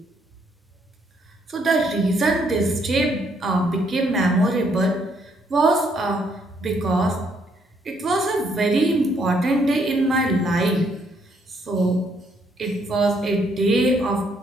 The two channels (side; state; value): both; normal; correlation 0.71